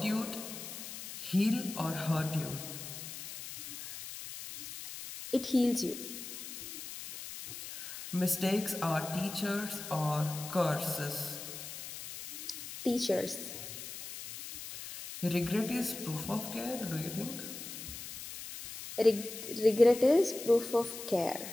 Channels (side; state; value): left; noise; hiss, 10 dB below the sound